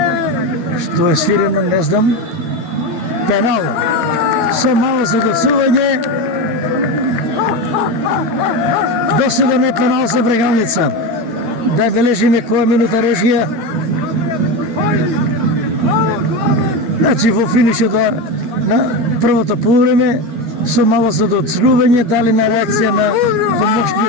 Што е свирено, не знам. Пенал. Со мало задоцување. Досуден е пенал за Брегалница. Да бележиме која минута режија. Значи во финишот на првото полувреме со мало задоцување дали на реакција на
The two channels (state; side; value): late; left; 12 ms